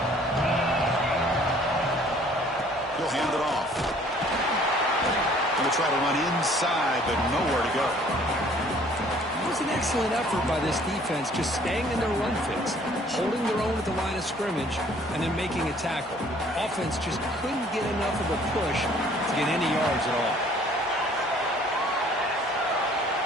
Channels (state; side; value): normal; both; correlation 0.56